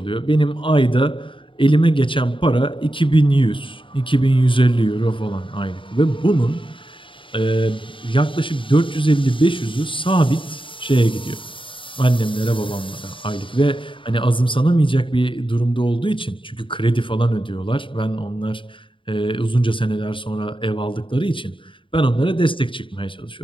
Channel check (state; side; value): late; right; 0.25 ms